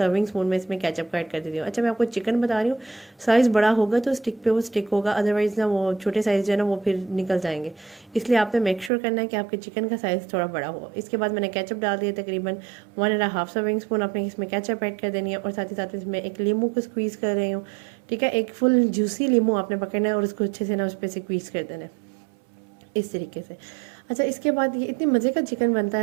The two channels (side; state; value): left; drops out; at 8.9 s